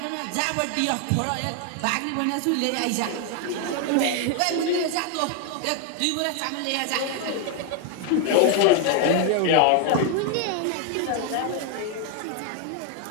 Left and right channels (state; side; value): different; both; correlation 0.01